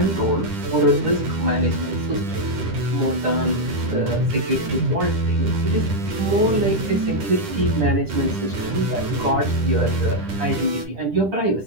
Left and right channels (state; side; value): late; left; 10 ms